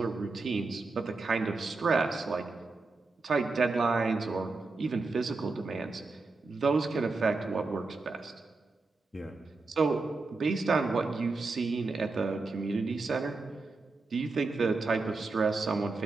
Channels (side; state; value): left; quieter; 3.8 dB